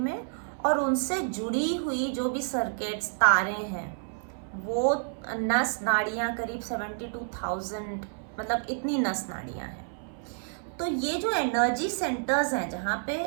और उनसे जुड़ी हुई जो भी सर्किट्स, तारे हैं, वो नस नाड़ियाँ करीब 72,000, मतलब इतनी नस नाड़ियाँ हैं। तो ये जो एनर्जी सेंटर्स हैं जहाँ पे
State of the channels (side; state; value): left; silent; 58 dB below the other